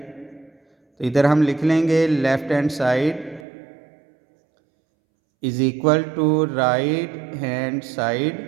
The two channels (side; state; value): left; drops out; at 3.5 s